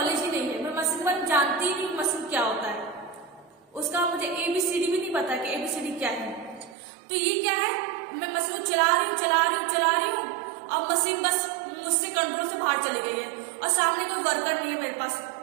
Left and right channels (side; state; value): left; drops out; at 6.8 s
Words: ही नहीं है, मैं मशीन के बारे में जानती ही नहीं मशीन क्या होता है, उसका मुझे ABCD भी नहीं पता कि ABCD क्या है। तो ये क्या है, मैं मशीन को चला रही हूँ, अब मशीन बस मुझसे कंट्रोल से बाहर चली गई है और सामने कोई वर्कर नहीं है मेरे पास,